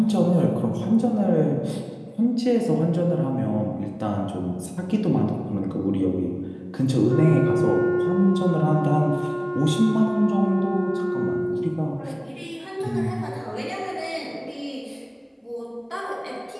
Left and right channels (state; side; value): identical; both; correlation 1.00